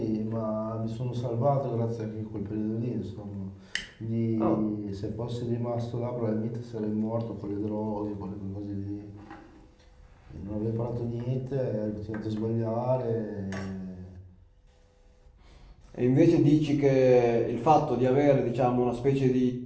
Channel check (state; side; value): identical; both; correlation 1.00